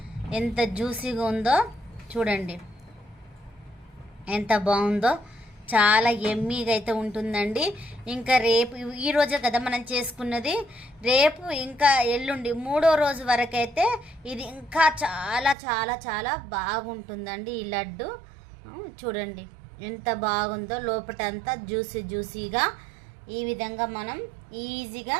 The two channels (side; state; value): left; drops out; at 15.6 s